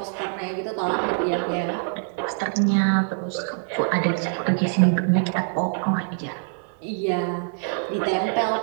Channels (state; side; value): silent; left; 62 dB below the other